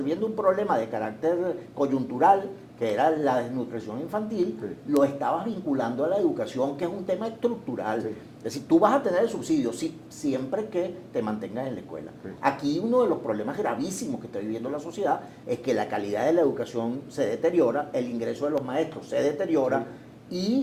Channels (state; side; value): identical; both; correlation 1.00